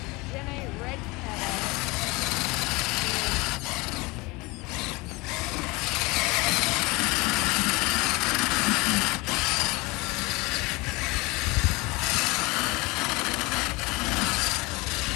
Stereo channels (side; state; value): right; quieter; 24.3 dB